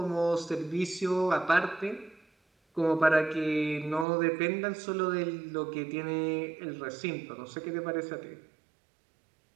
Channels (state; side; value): drops out; left; at 4.0 s